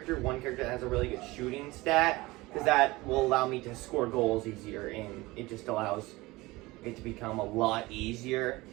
one character that has a really good shooting stat, because that will allow me to score goals easier, and it just allows it to become a lot easier,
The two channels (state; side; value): quieter; left; 20.9 dB